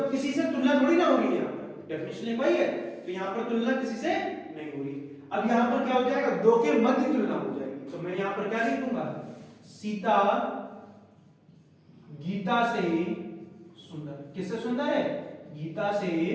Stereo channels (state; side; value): identical; both; correlation 1.00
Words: किसी से तुलना थोड़ी ना हो रही है, यहां पर डेफिनेशन वही है, तो यहां पर तुलना किसी से नहीं हो रही। अब यहां पर क्या हो जाएगा? दो के मध्य तुलना हो जाएगी, तो मैं यहां पर क्या लिखूंगा? सीता गीता से सुंदर। किससे सुंदर है? गीता से